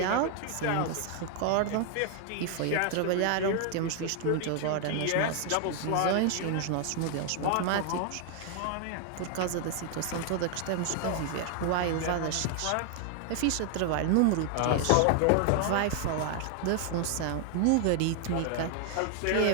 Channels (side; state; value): both; different; correlation 0.00